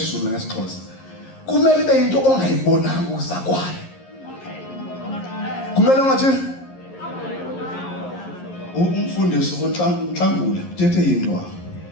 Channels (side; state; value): right; late; 11 ms